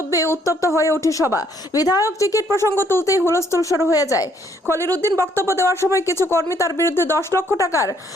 উত্তপ্ত হয়ে ওঠে সভা। বিধায়ক টিকিট প্রসঙ্গ তুলতেই হুলস্থুল শুরু হয়ে যায়। খলিল উদ্দিন বক্তব্য দেওয়ার সময় কিছু কর্মী তার বিরুদ্ধে 10 লক্ষ টাকার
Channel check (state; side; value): normal; both; correlation 0.67